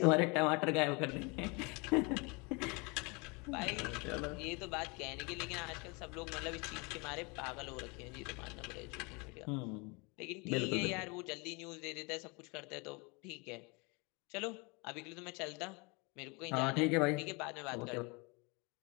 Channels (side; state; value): right; quieter; 29.3 dB